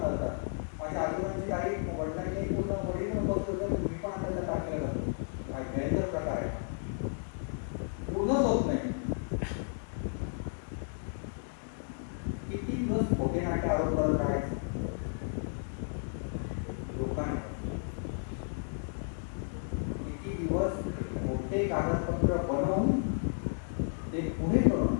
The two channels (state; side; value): silent; right; digital silence